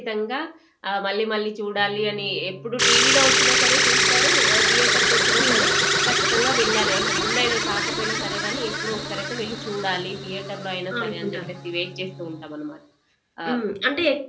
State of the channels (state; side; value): identical; both; correlation 1.00